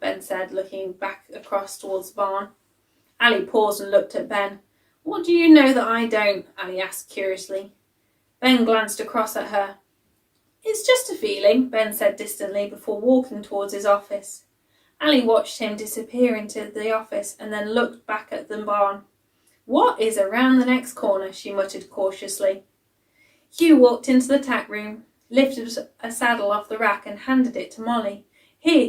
said, looking back across towards the barn. Ali paused and looked at Ben. "What do you know that I don't?" Ali asked curiously. Ben glanced across at her. "It's just a feeling," Ben said distantly before walking towards his office. Ali watched him disappear into the office and then looked back at the barn. "What is around the next corner?" she muttered cautiously. Hugh walked into the tack room, lifted a saddle off the rack and handed it to Molly.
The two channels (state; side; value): identical; both; correlation 1.00